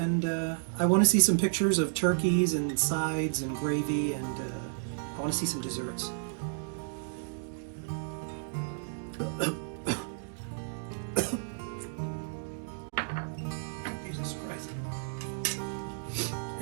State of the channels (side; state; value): left; silent; digital silence